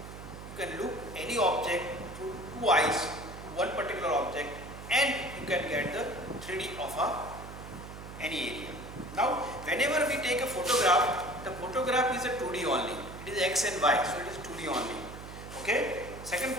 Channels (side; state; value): right; noise; hum, 12 dB below the sound